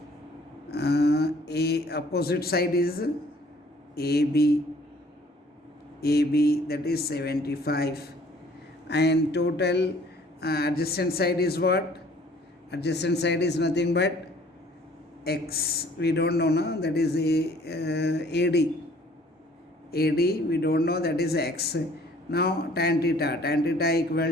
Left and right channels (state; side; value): normal; both; correlation 0.56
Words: A opposite side is AB. AB, that is 75. And total adjacent side is what? Adjacent side is nothing but x. We don't know, no? That is AD. AD, we don't know, that is x. Now tan theta. Tan theta